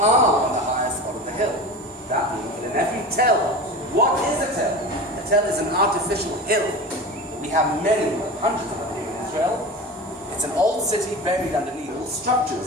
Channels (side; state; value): both; normal; correlation 0.31